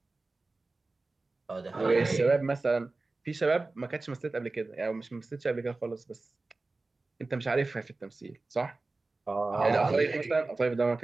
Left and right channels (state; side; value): quieter; left; 3.4 dB